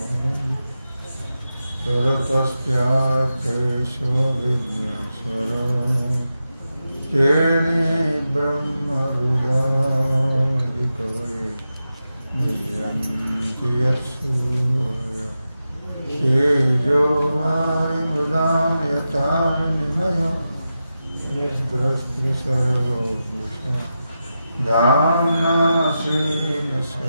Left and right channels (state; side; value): inverted; both; correlation -0.90